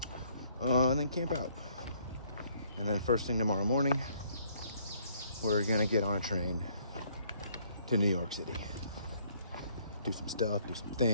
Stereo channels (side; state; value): both; inverted; correlation -0.64